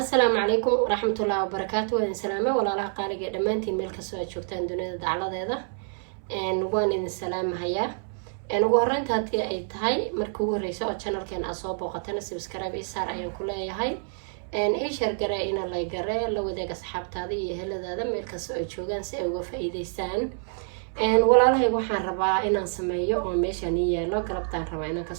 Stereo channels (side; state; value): left; silent; 60 dB below the other